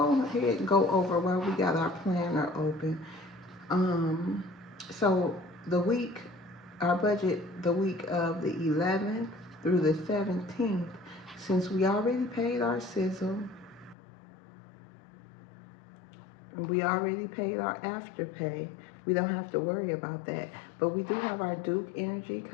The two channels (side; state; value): right; drops out; at 14.0 s